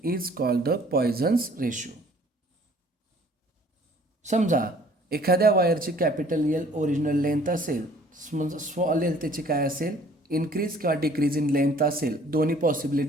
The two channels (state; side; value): normal; both; correlation 0.55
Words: is called the Poisson's ratio. समजा एखाद्या वायरची कॅपिटल एल ओरिजिनल लेंथ असेल, स्मॉल एल त्याची काय असेल, इन्क्रीज किंवा डिक्रीज इन लेंथ असेल. दोन्ही